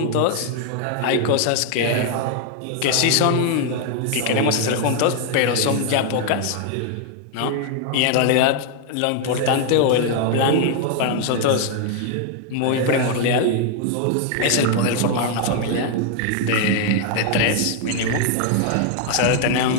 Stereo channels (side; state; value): both; different; correlation 0.00